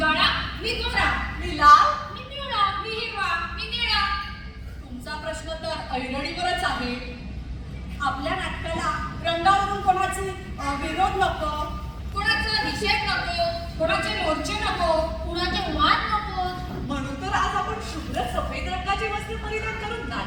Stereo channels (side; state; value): both; identical; correlation 1.00